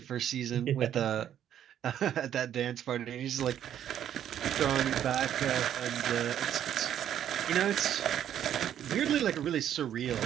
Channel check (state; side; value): quieter; left; 10.2 dB